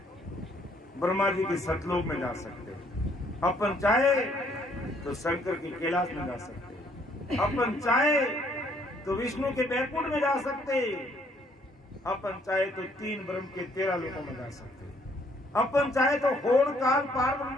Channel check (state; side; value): normal; both; correlation 0.66